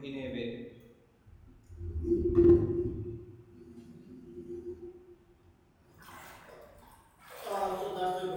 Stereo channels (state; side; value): identical; both; correlation 1.00